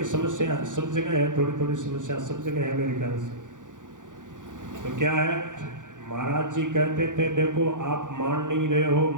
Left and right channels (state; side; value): late; left; 0.87 ms